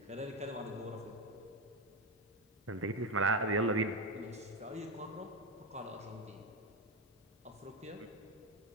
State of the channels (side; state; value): both; normal; correlation 0.12